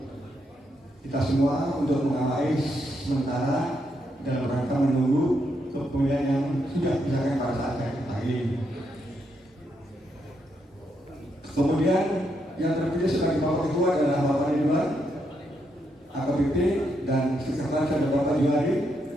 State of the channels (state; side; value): normal; both; correlation 0.79